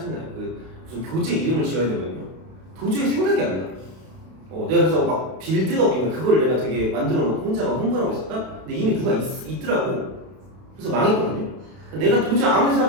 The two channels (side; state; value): left; late; 32 ms